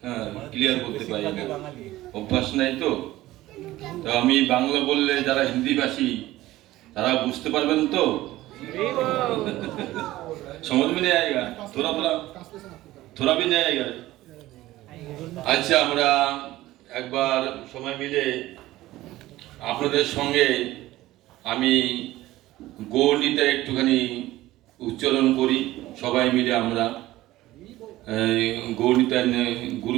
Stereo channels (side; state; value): left; quieter; 16.4 dB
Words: হ্যাঁ, ক্লিয়ার বলতে পারি না, অভ্যাস নাই তো। তো আমি বাংলা বললে যারা হিন্দিভাষী তারা বুঝতে পারবেন তো, समझ में नहीं आएगा, थोड़ा थोड़ा थोड़ा भी नहीं आएगा। আচ্ছা, আমরা একবার সময় মিলে আপনাদের সঙ্গে আমি গৌরনীতা একটুখানি উচ্চারণ করি, সবাই মিলে আমরা গৌরনীতার